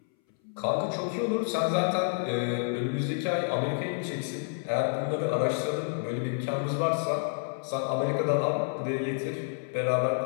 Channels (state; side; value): silent; right; 58 dB below the other